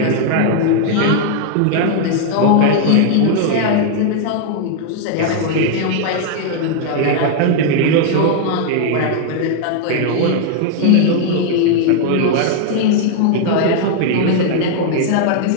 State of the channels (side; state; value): both; different; correlation 0.00